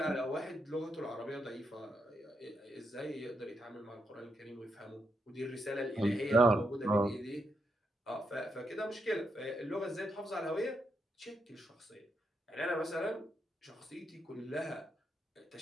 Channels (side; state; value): both; normal; correlation 0.81